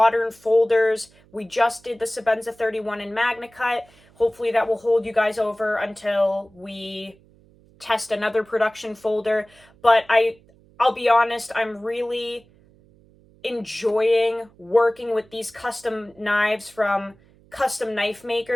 folders. We just did the Sebenza 31 in MagnaCut. Hopefully that will hold you guys over until we test another production folder. But I'll be honest, I'm really enjoying working with these custom knives from custom knife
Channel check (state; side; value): noise; right; hum, 29 dB below the sound